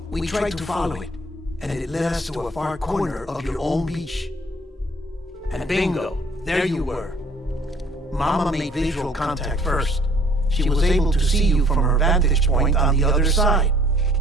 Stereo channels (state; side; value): normal; both; correlation 0.56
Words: we tried to follow it, and it led us to a far corner of your own beach. And bingo, there you were. Mama made visual contact first. She was able to see you from her vantage point on the other side.